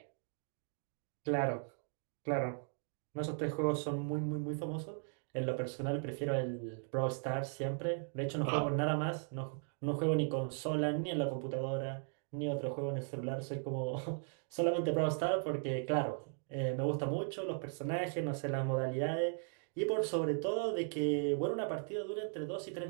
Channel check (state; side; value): silent; left; 53 dB below the other